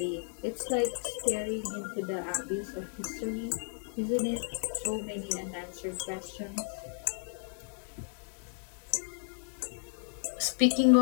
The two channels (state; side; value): silent; right; 56 dB below the other